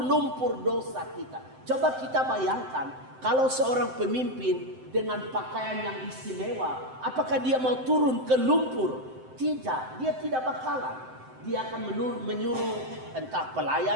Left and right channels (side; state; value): left; late; 7.8 ms